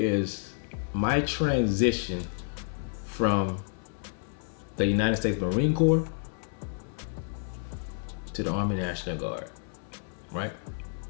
my transition from the United States Marine Corps to the Army National Guard, right?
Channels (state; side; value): silent; right; 58 dB below the other